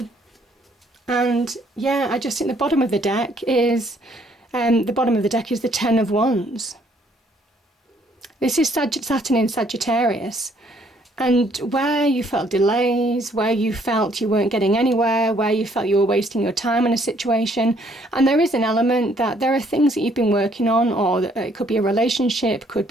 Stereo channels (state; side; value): normal; both; correlation 0.65